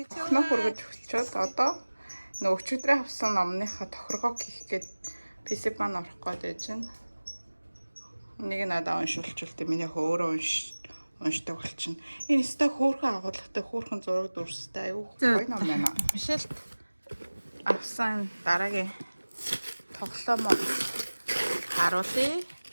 цаа. Нөх хүргэж өгчөөд одоо нөгөө өчигдрээ авсан номныхаа тохиргоо хийх гээд PC бан орох гээд чинь. Нэг надаа уншуулчихвал миний өөрөө уншдаг болчихно. Энэ өстой хөөрхөн агуулгатай хөөрхөн зураг дүрстэй аюу гоё ном байна. Мишель авсан дараагийн тоглоом харуулъя.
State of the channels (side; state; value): both; inverted; correlation -1.00